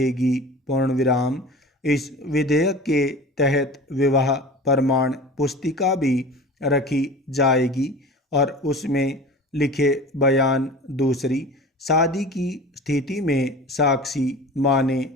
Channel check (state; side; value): normal; both; correlation 0.37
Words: पूर्ण विराम। इस विधेयक के तहत विवाह प्रमाण पुस्तिका भी रखी जाएगी और उसमें लिखे बयान दूसरी शादी की स्थिति में साक्षी माने